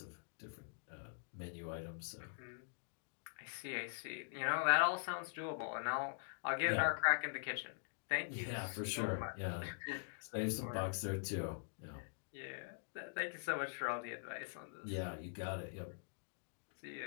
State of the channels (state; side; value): silent; right; digital silence